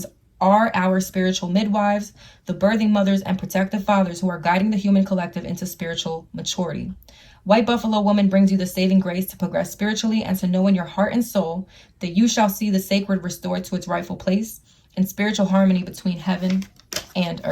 are our spiritual midwives, the birthing mothers and protective fathers who are guiding the human collective into spiritual maturity. White Buffalo woman brings you the saving grace to progress spiritually and to know in your heart and soul that you shall see the sacred restored to its rightful place in spiritual harmony between heaven and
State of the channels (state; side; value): identical; both; correlation 1.00